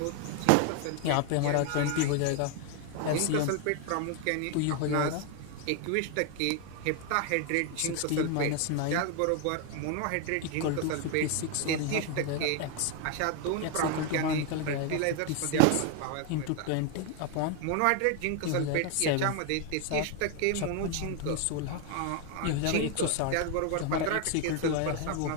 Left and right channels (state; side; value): different; both; correlation 0.01